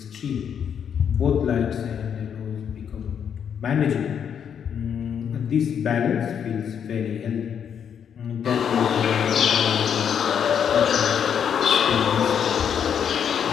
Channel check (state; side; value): quieter; right; 8.0 dB